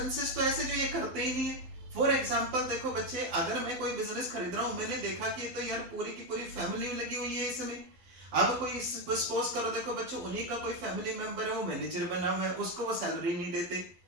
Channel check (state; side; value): late; left; 11 ms